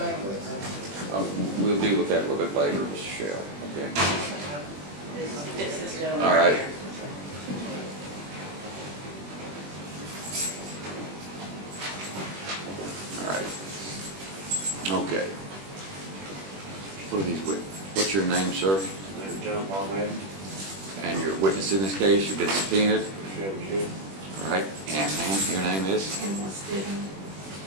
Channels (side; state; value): left; late; 21 ms